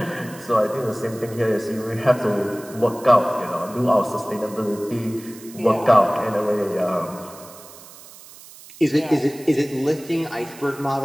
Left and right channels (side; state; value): right; noise; hiss, 19 dB below the sound